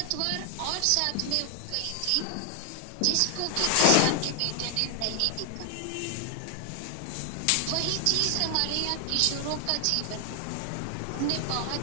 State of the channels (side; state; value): both; different; correlation 0.00